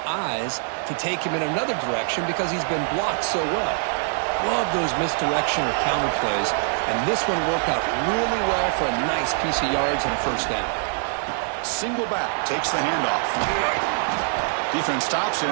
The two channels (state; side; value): silent; left; 63 dB below the other